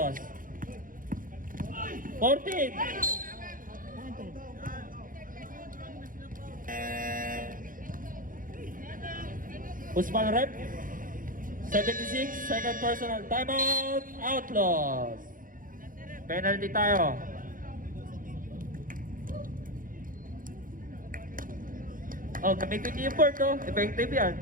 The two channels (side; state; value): left; late; 0.40 ms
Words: 14. Usman rep. 76, second personal. Timeout. Outlaws. Penalty tayo. Oh, gamitin niyo yung board, oh. Effective yan.